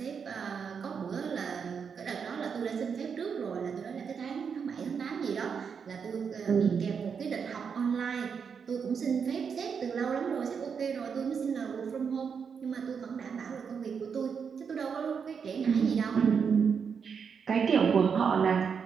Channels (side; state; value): left; quieter; 6.4 dB